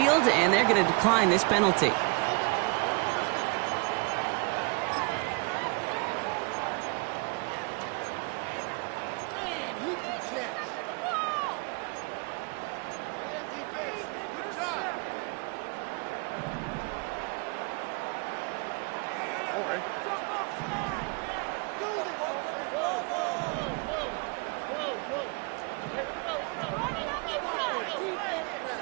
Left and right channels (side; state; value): left; quieter; 31.5 dB